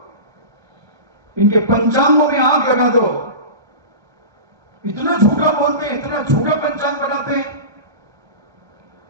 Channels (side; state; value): left; late; 1.2 ms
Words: इनके पंचांगों में आग लगा दो। इतना झूठा बोलते हैं, इतना झूठा पंचांग बनाते हैं।